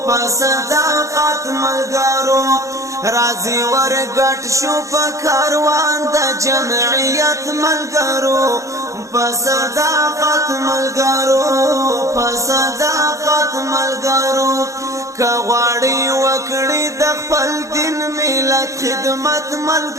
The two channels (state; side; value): late; left; 0.15 ms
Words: په صداقت ملګرو راځي ورګټ شو په کاروان د جمعیت ملګرو په صداقت ملګرو په صداقت ملګرو کغواړی وکړی د خپل دین ملت خدمت